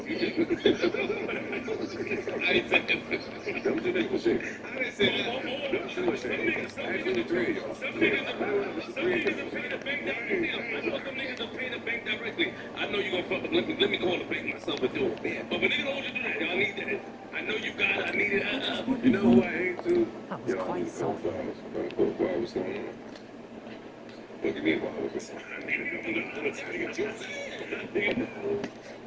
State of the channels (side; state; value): both; identical; correlation 1.00